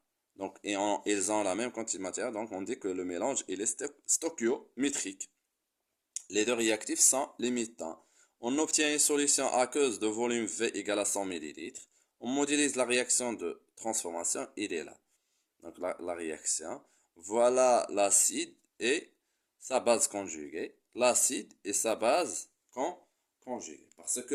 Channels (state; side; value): identical; both; correlation 1.00